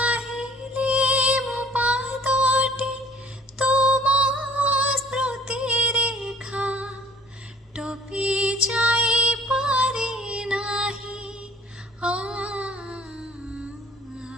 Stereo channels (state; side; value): normal; both; correlation 0.53